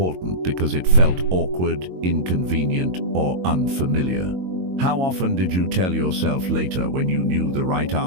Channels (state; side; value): late; left; 22 ms